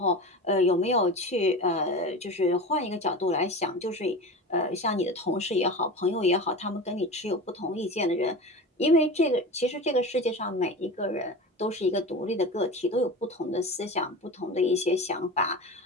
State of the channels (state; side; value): normal; both; correlation 0.30